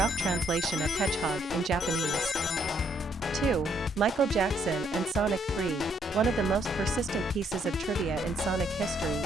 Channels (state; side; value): normal; both; correlation 0.71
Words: translation of hedgehog in Japanese. 2. Michael Jackson and Sonic 3. One of the most persistent pieces of trivia in Sonic history